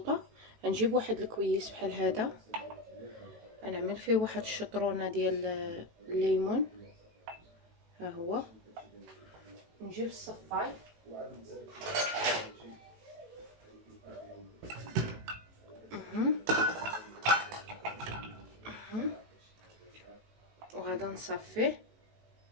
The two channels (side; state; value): left; late; 18 ms